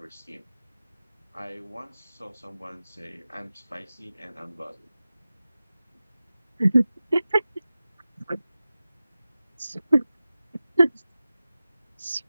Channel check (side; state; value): both; inverted; correlation -0.96